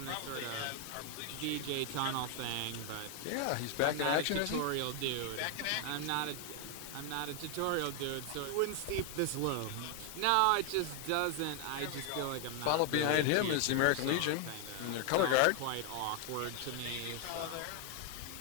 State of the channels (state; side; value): different; both; correlation 0.00